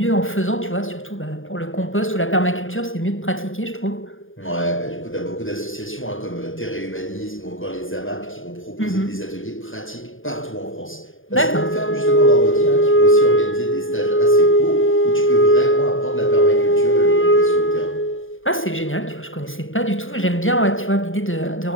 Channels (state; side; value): late; right; 0.59 ms